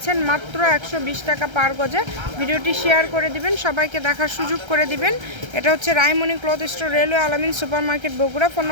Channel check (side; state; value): left; late; 1.3 ms